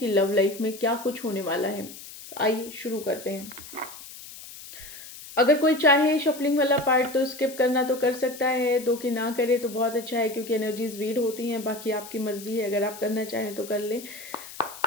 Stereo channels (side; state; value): left; noise; hiss, 15 dB below the sound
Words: लव लाइफ में क्या कुछ होने वाला है। तो आइए शुरू करते हैं। अगर कोई चाहे शफलिंग वाला पार्ट तो स्किप करना तो कर सकता है, दो कि ना करे तो बहुत अच्छा है, क्योंकि एनर्जीज रीड होती हैं। बाकी आपकी मर्जी है, अगर आप करना चाहें तो कर ले।